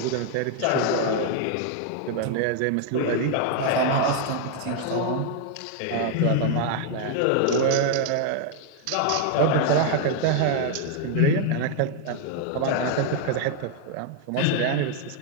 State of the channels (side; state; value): both; different; correlation 0.00